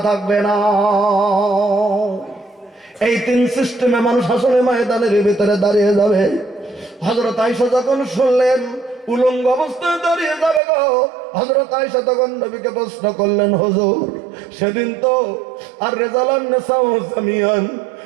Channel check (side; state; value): left; drops out; at 10.6 s